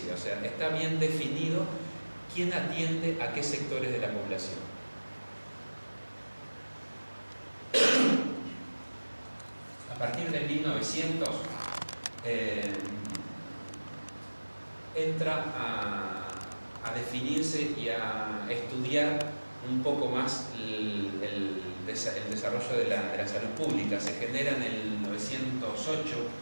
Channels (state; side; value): inverted; both; correlation -1.00